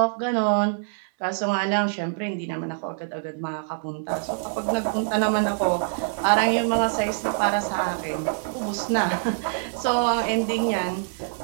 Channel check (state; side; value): silent; left; digital silence